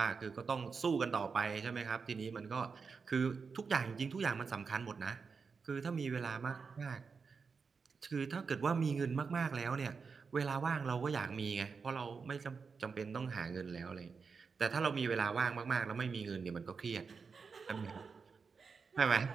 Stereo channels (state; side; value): quieter; left; 5.2 dB